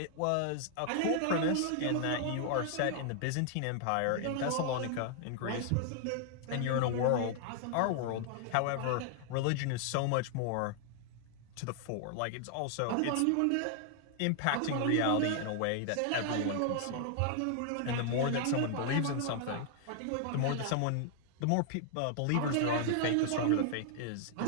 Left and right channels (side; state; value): both; different; correlation 0.00